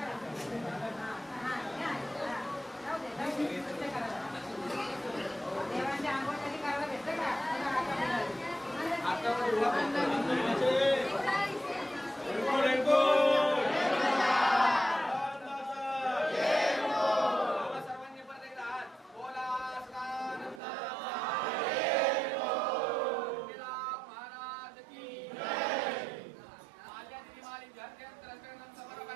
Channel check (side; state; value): left; drops out; at 20.6 s